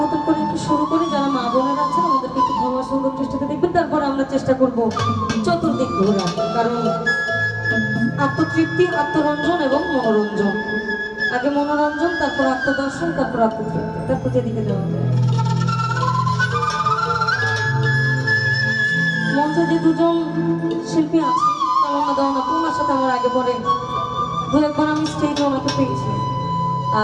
করে একটু শুরু করি। যারা মা বোনেরা আছেন আমাদেরকে একটু ক্ষমা সুন্দর দৃষ্টিতে দেখবেন। তারপর আমরা চেষ্টা করব চতুর্দিক ঘোরা, কারণ আত্মতৃপ্তি, আত্মরঞ্জন এবং মনোরঞ্জন, আগে মনোরঞ্জন, তারপর আত্মদর্শন, তারপর আত্মতৃপ্তি, তারপর যেদিকে যাওয়া যায়। মঞ্চে যে দুজন শিল্পী আছে, তামান্না দেওয়ান আপু, ওনার সাথে আমার আগে পরে দু একবার আমি স্টেজে ওনাকে পেয়েছি।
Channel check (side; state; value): both; identical; correlation 1.00